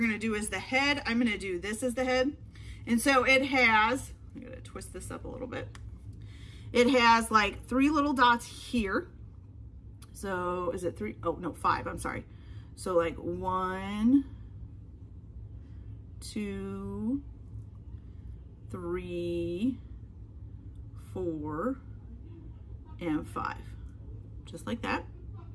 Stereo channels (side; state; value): both; identical; correlation 1.00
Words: do as the head. I'm gonna do this as the head. And so it has, I'm gonna twist this up a little bit. It has like 3 little dots here. So is it 3? Oh no, 5, I'm sorry. So like 1, 2, 3, 4, and 5. Just like that.